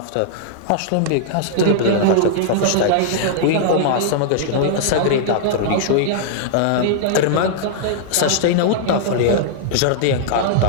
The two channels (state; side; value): different; both; correlation -0.01